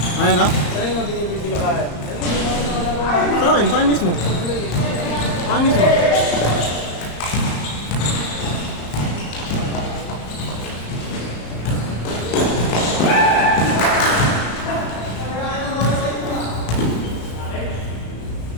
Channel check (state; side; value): late; right; 35 ms